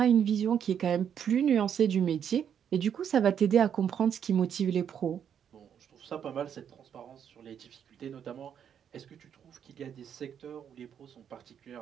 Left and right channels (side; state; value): left; quieter; 8.5 dB